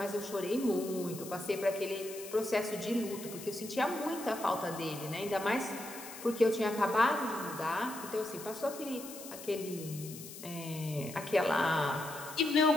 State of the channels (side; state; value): left; noise; hiss, 13 dB below the sound